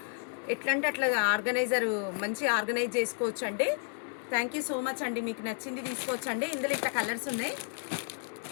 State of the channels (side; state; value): right; silent; 57 dB below the other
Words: ఎట్లా అంటే అట్లా మంచి ఆర్గనైజ్ చేసుకోవచ్చు అండి. థ్యాంక్ యూ సో మచ్ అండి. మీకు నచ్చింది తీసుకోవచ్చు అండి. ఇందులో ఇట్లా కలర్స్ ఉన్నాయి,